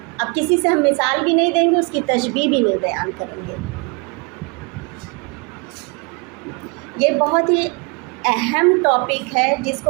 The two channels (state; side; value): quieter; left; 31.3 dB